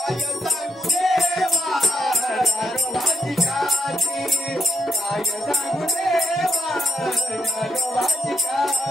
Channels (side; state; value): both; normal; correlation 0.77